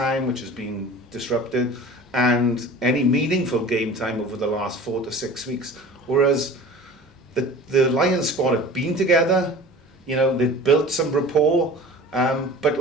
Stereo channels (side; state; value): both; normal; correlation 0.40